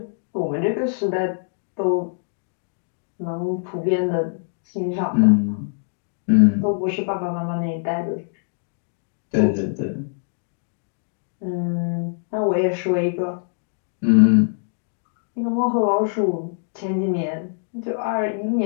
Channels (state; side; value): silent; right; digital silence